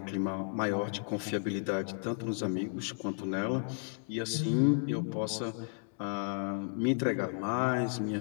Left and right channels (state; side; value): silent; right; digital silence